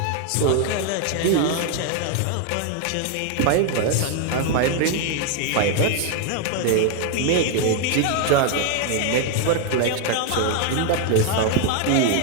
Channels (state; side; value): different; both; correlation 0.01